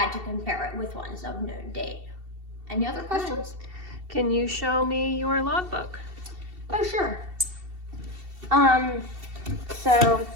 to compare it with ones of known date. Any other questions? Can you show me your logbook? Oh, sure. So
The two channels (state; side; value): late; left; 2.7 ms